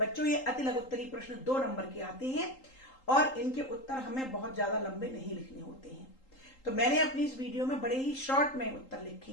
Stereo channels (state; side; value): late; right; 3.8 ms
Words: ये अति लघुत्तरी प्रश्न 2 नंबर के आते हैं और इनके उत्तर हमें बहुत ज्यादा लंबे नहीं लिखने होते हैं, तो मैंने अपनी इस वीडियो में बड़े ही शॉर्ट में उत्तर लिखे